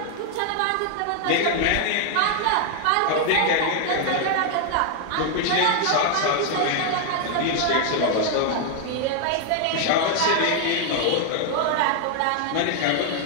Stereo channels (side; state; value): both; different; correlation 0.00